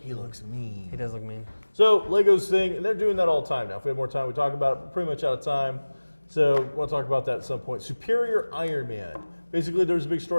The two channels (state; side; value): inverted; both; correlation -1.00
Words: looks mean. He does look mean. So Lego's thing, and they're doing that all the time now. If we have more time, we talk about it. We're pretty much out of time. So we'll talk about that at some point. Superior Iron Man. Basically, there's a big